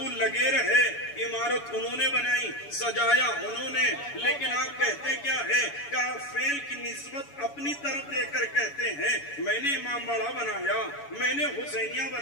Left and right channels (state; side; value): late; right; 7.0 ms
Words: لگے رہے، عمارت انہوں نے بنائی، سجایا انہوں نے، لیکن آپ کہتے کیا ہے کہ فعل کی نسبت اپنی طرف دے کر کہتے ہیں میں نے امام باڑہ بنایا، میں نے حسینیہ